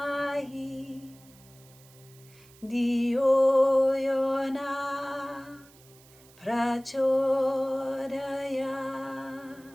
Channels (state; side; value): noise; right; hiss, 26 dB below the sound